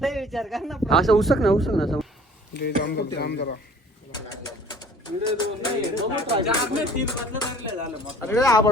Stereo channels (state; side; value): normal; both; correlation 0.50